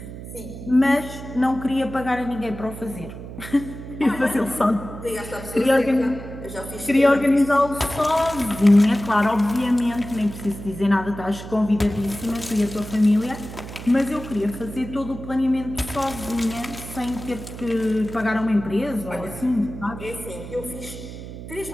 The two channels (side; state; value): right; noise; hum, 11 dB below the sound